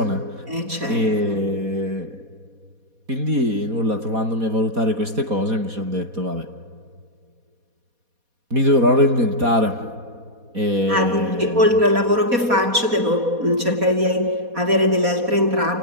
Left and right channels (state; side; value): late; left; 4.2 ms